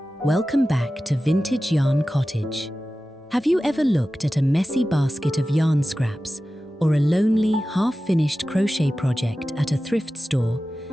Welcome back to Vintage Yarn Cottage. Have you ever looked at a messy basket of yarn scraps or a lonely, half-finished crochet project at a thrift store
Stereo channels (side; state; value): both; normal; correlation 0.95